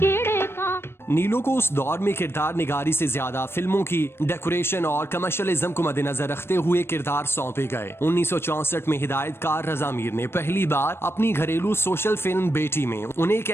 नीलो को उस दौर में किरदार निगारी से ज्यादा फिल्मों की डेकोरेशन और कमर्शियलिज्म को मद्देनजर रखते हुए किरदार सौंपे गए। 1964 में हिदायतकार रजा मीर ने पहली बार अपनी घरेलू सोशल फिल्म बेटी में उन्हें एक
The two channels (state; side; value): late; right; 0.12 ms